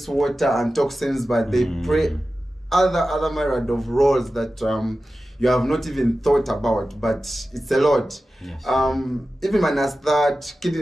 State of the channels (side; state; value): both; normal; correlation 0.94